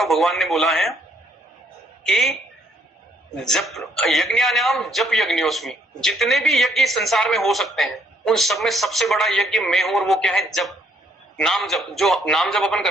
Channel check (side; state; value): both; normal; correlation 0.69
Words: हूं। भगवान ने बोला है कि जप यज्ञानाम जप यज्ञोस्मि, जितने भी यज्ञ संसार में हो सकते हैं उन सब में सबसे बड़ा यज्ञ मैं हूं, और वो क्या है? जप, नाम जप। जो नाम जप अपन